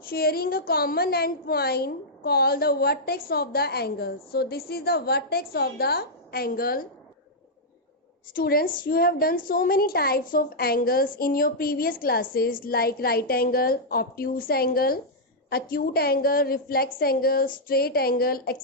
a common endpoint called the vertex of the angle. So this is the vertex of the angle. Students, you have done so many types of angles in your previous classes like right angle, obtuse angle, acute angle, reflex angle, straight angle,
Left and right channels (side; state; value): both; normal; correlation -0.08